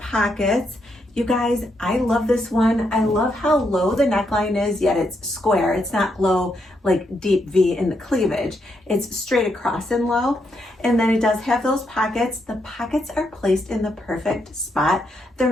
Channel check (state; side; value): normal; both; correlation 0.79